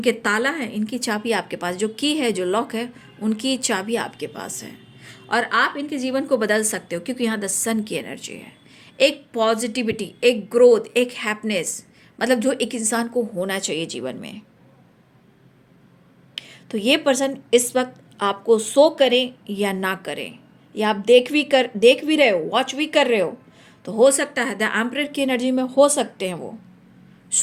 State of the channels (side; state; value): both; identical; correlation 1.00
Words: ताला है, इनकी चाबी आपके पास, जो की है, जो लॉक है, उनकी चाबी आपके पास है, और आप इनके जीवन को बदल सकते हो, क्योंकि यहाँ द सन की एनर्जी है। एक पॉजिटिविटी, एक ग्रोथ, एक हैप्पीनेस, मतलब जो एक इंसान को होना चाहिए जीवन में। तो ये पर्सन इस वक्त आपको शो करें या ना करें, या आप देख भी रहे हो, वॉच भी कर रहे हो, तो हो सकता है द एम्परर की एनर्जी में हो सकते हैं वो